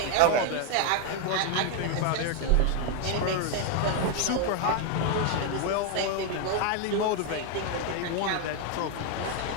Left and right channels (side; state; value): both; different; correlation 0.01